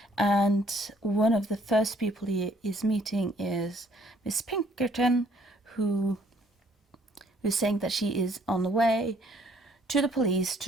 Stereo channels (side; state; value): both; normal; correlation 0.63